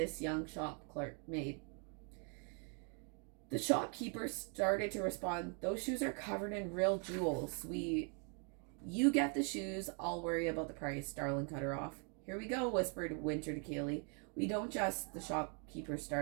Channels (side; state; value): left; quieter; 39.3 dB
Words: young shop clerk made. The shopkeeper started to respond, "Those shoes are covered in real jewels. You get the shoes, I'll worry about the price," Darlin cut her off. "Here we go," whispered Winter to Kaylee. "We don't just," the shopkeeper